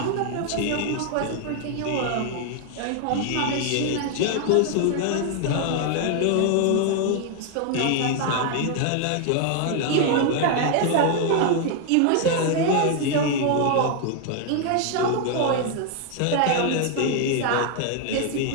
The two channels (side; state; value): both; different; correlation 0.00